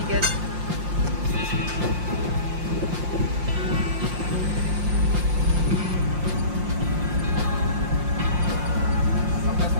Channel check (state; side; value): late; left; 5.7 ms